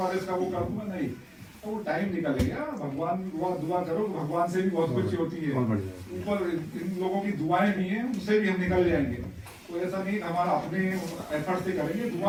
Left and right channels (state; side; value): identical; both; correlation 1.00